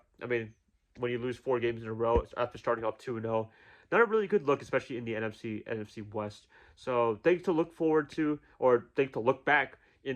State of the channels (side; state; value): both; identical; correlation 1.00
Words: I mean, when you lose 4 games in a row after starting off 2-0, not a really good look, especially in the NFC West. So things to look forward to, or things to look back in